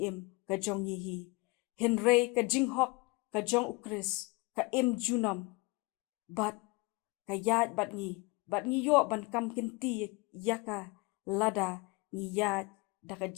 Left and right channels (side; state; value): right; quieter; 24.9 dB